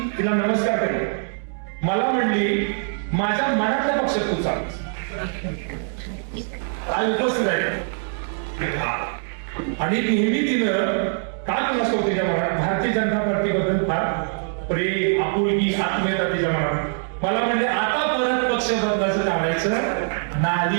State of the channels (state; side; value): silent; left; digital silence